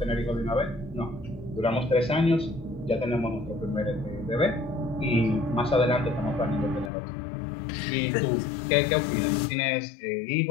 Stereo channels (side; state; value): right; drops out; at 6.9 s